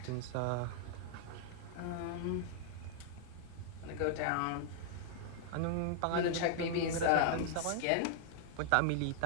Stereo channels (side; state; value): both; different; correlation -0.01